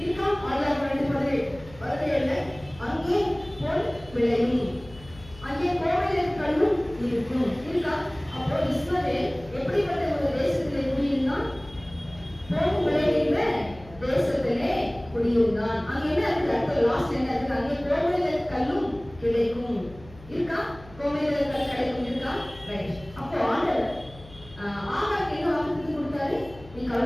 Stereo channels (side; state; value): left; noise; hum, 20 dB below the sound